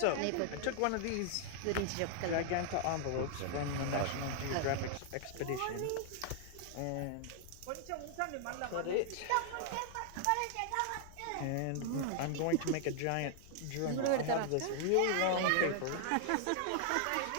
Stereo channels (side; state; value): both; different; correlation 0.00